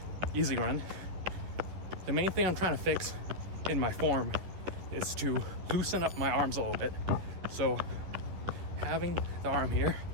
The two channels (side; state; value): left; late; 10 ms